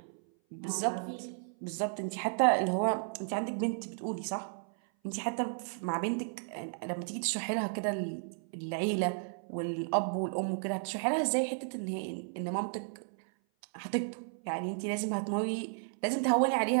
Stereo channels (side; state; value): left; silent; 55 dB below the other